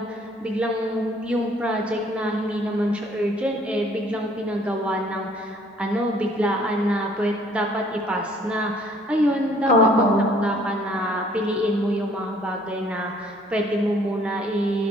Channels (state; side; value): normal; both; correlation 0.59